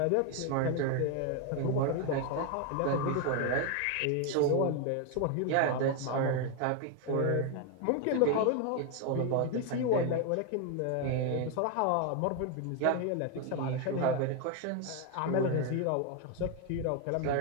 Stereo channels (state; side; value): different; both; correlation 0.01